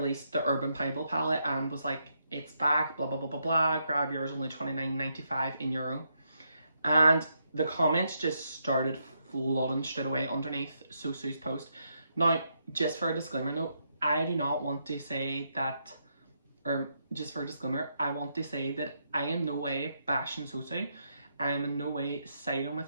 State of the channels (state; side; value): inverted; both; correlation -0.79